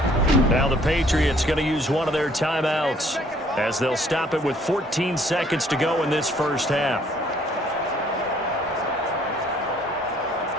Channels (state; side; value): normal; both; correlation 0.62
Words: Now the Patriots going to use one of their timeouts, as they'll stop it with 14 seconds to go in this first half.